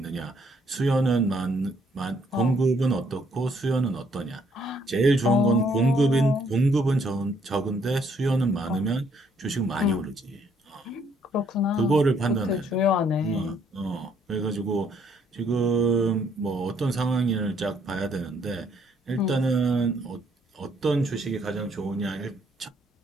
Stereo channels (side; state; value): both; normal; correlation 0.68